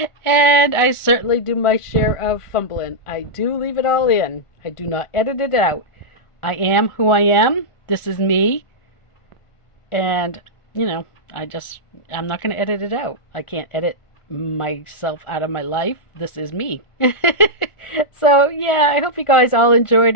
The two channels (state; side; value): late; right; 1.4 ms